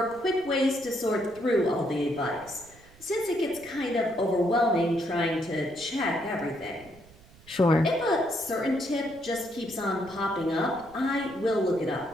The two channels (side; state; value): right; noise; rumble, 24 dB below the sound